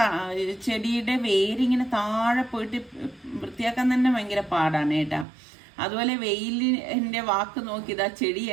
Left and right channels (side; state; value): left; drops out; at 5.2 s